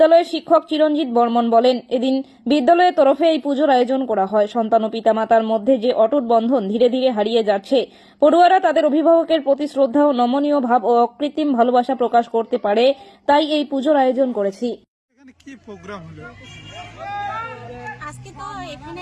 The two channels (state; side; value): identical; both; correlation 1.00